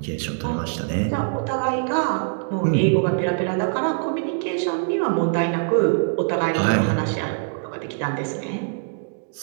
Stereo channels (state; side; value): silent; left; digital silence